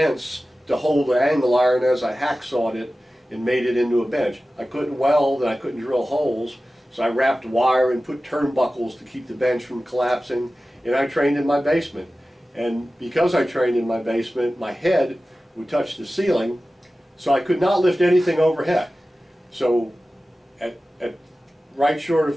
to hold the angle iron as I hacksawed it and made it into a bench. I couldn't weld and I couldn't drill holes, so I wrapped wire and put turnbuckles to keep the bench from collapsing, and I trained in my basement. And because I trained in my basement, my head would touch the ceiling, so I could not lift anything overhead. So at right short of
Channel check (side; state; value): both; normal; correlation 0.95